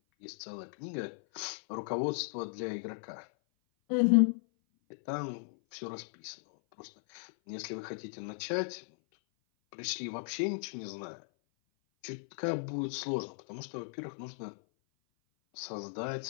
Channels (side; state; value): right; silent; 54 dB below the other